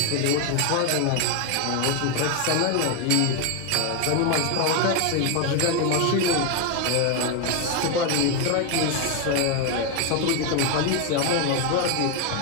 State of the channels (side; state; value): both; different; correlation 0.01